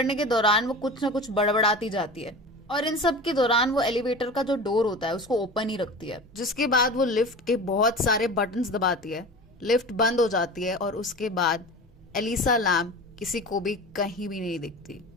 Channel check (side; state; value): both; normal; correlation 0.34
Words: के दौरान वो कुछ ना कुछ बड़बड़ाती जाती है, और इन सब के दौरान वो एलिवेटर का जो डोर होता है उसको ओपन ही रखती है, जिसके बाद वो लिफ्ट के बहुत सारे बटन्स दबाती है। लिफ्ट बंद हो जाती है, और उसके बाद एलिसा लैम किसी को भी कहीं भी नहीं दिखती।